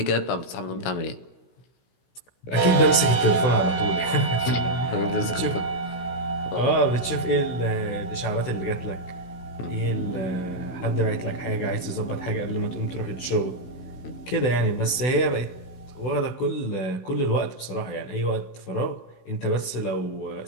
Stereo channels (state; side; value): late; right; 16 ms